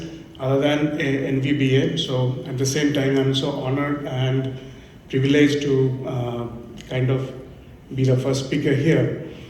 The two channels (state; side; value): identical; both; correlation 1.00